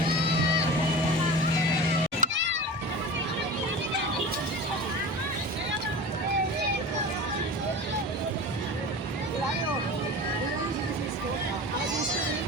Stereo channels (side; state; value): both; normal; correlation 0.33